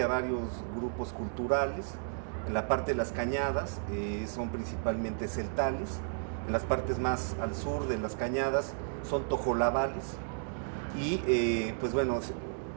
a varios grupos culturales. En la parte de las cañadas son principalmente celtales. En las partes más al sur de las cañadas son tojolabales. Y pues bueno,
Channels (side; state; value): left; silent; digital silence